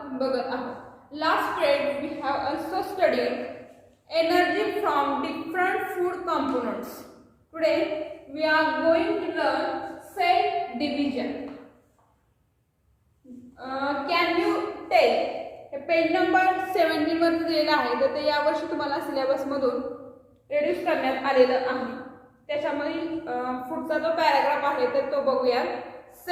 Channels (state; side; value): identical; both; correlation 1.00